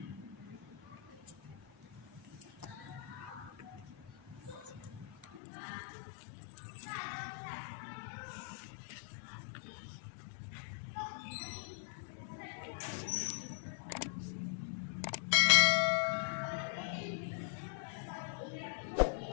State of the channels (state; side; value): drops out; right; at 5.4 s